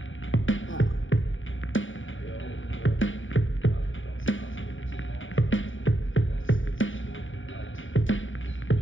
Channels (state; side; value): late; right; 0.57 ms